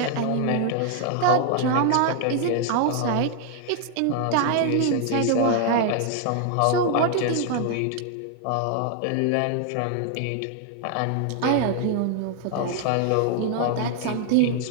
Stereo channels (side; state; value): both; different; correlation 0.00